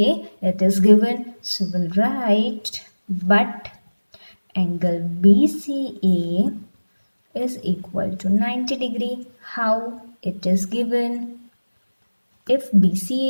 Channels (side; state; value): both; inverted; correlation -1.00